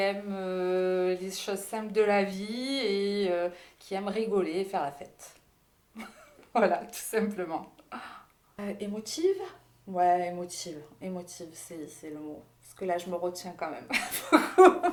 les choses simples de la vie et qui aime rigoler et faire la fête. Voilà, tout simplement. Émotive? Ouais, émotive. Émotive, c'est le mot. Parce que là, je me retiens quand même.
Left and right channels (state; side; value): identical; both; correlation 1.00